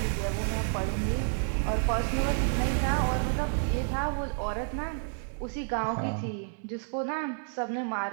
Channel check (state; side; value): silent; left; 58 dB below the other